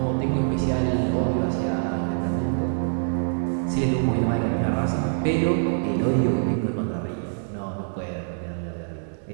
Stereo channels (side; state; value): left; silent; 62 dB below the other